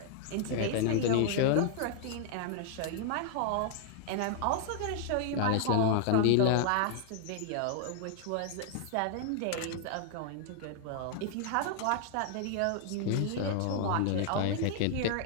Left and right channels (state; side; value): different; both; correlation 0.00